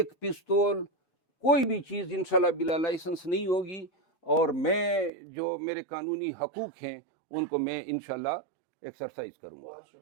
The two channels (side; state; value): left; drops out; at 5.1 s